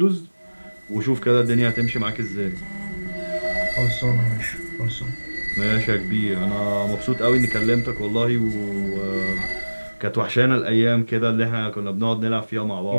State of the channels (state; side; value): inverted; both; correlation -1.00